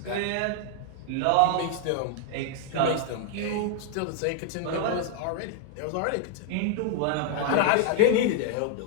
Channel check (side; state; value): both; different; correlation 0.00